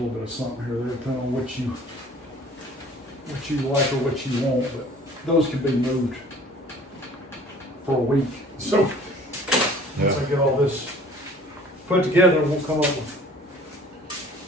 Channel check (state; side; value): normal; both; correlation 0.50